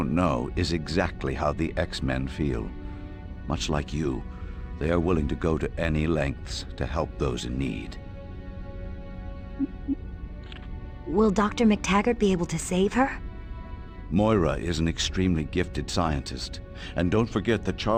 know, is exactly how the X-Men feel. Much like you, they are willing to go to any lengths to help those in need. Will Dr. McTaggart be able to save her? Moira is an extremely gifted scientist, and don't forget that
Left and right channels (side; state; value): both; identical; correlation 1.00